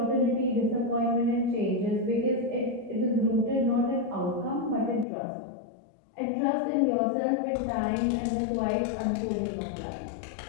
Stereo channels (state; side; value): drops out; right; at 5.1 s